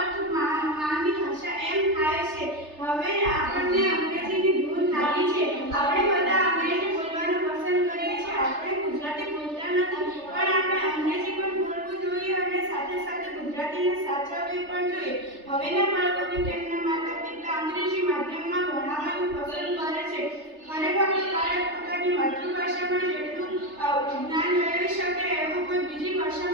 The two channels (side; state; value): left; late; 3.3 ms